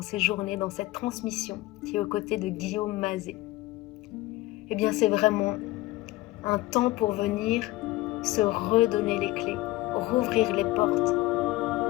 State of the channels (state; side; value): quieter; right; 18.3 dB